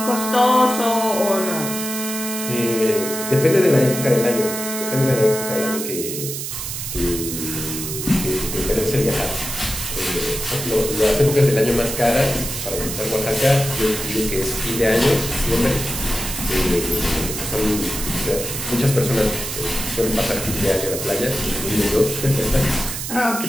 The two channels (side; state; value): right; noise; hiss, 5 dB below the sound